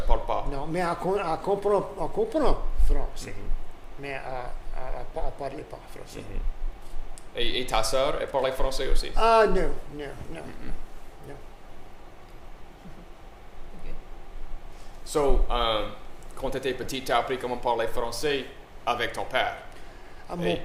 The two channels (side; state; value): both; identical; correlation 1.00